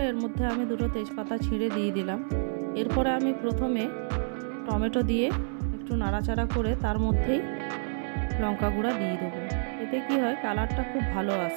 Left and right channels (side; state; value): left; silent; 59 dB below the other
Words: এর মধ্যে আমি দুটো তেজপাতা ছিঁড়ে দিয়ে দিলাম। এরপরে আমি প্রথমে টমেটো দিয়ে একটু নাড়াচাড়া করে তার মধ্যেই লঙ্কা গুঁড়া দিয়ে দেবো। এতে কি হয়, কালারটা খুব ভালো